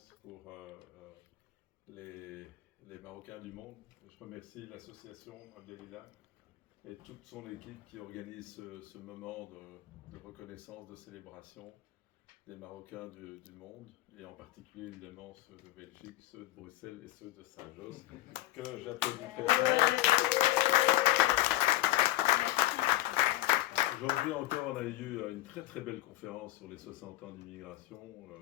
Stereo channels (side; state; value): right; quieter; 16.9 dB